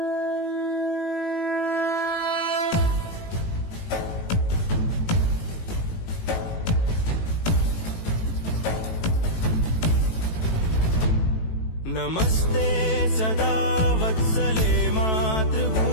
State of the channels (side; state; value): right; late; 18 ms